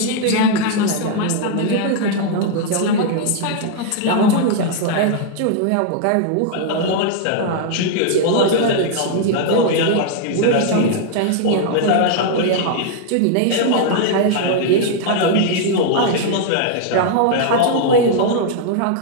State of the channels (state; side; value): different; both; correlation 0.00